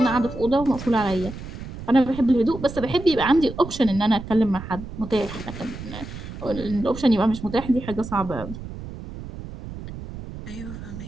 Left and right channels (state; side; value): noise; right; rumble, 11 dB below the sound